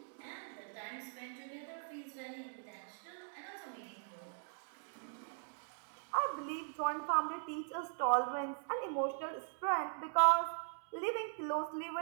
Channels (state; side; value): silent; left; digital silence